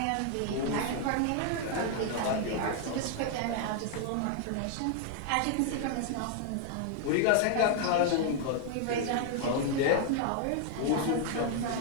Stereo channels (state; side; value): different; both; correlation 0.00